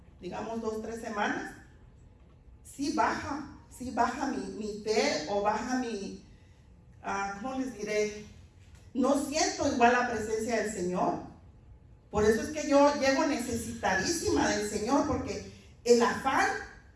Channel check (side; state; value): both; identical; correlation 1.00